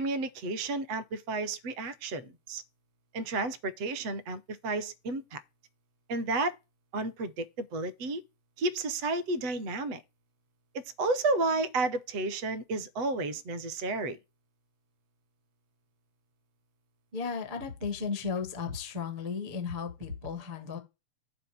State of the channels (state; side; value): late; left; 7.9 ms